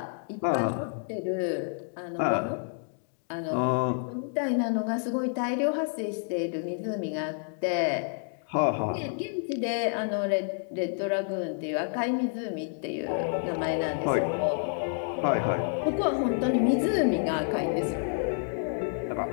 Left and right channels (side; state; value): right; silent; digital silence